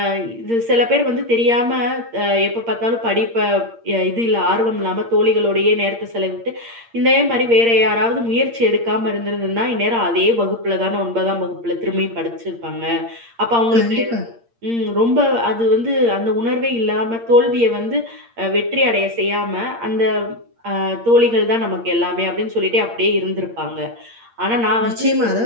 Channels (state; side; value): late; left; 8.6 ms